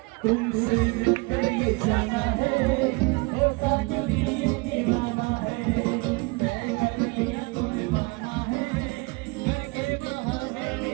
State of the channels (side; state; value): left; quieter; 27.2 dB